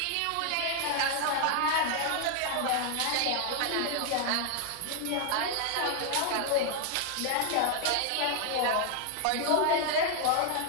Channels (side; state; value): both; different; correlation 0.00